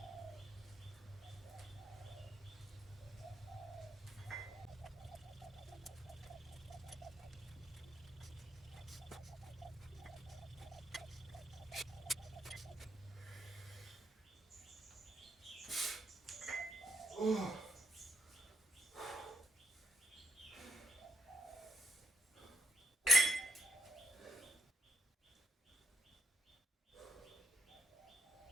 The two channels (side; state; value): both; normal; correlation 0.76